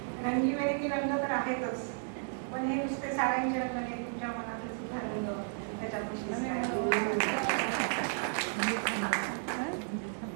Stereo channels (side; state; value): left; silent; digital silence